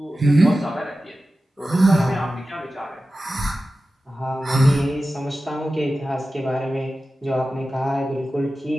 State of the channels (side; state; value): both; normal; correlation 0.94